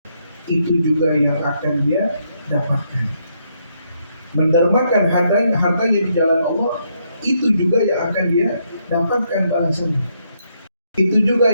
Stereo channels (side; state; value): both; inverted; correlation -0.75